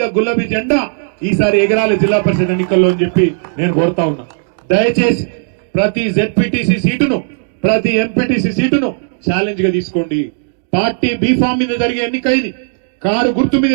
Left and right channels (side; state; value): left; silent; digital silence